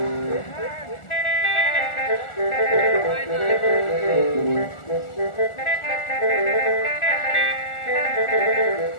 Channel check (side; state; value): right; late; 1.4 ms